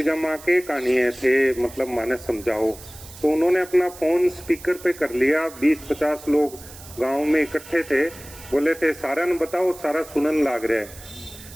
के कहानी है थे, मतलब माने समझाओ। तो उन्होंने अपना फ़ोन स्पीकर पे कर लिया, 20-50 लोग गांव में इकट्ठे थे, बोले थे सारा न बताओ, सारा सुनन लाग रहा है।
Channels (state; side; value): noise; right; hiss, 18 dB below the sound